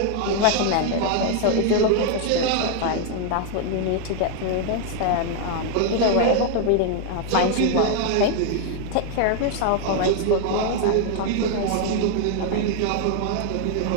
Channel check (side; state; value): both; different; correlation 0.00